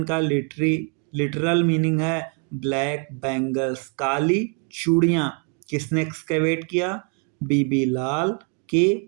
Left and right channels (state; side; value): quieter; left; 36.9 dB